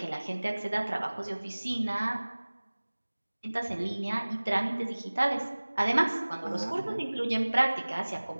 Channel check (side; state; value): both; inverted; correlation -1.00